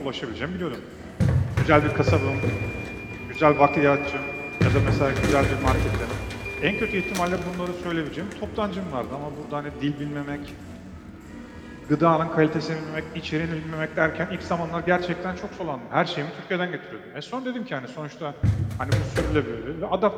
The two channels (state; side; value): identical; both; correlation 1.00